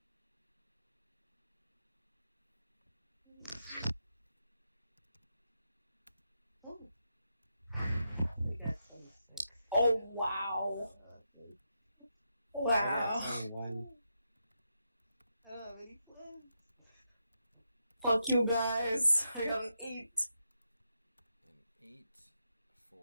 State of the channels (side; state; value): both; inverted; correlation -0.84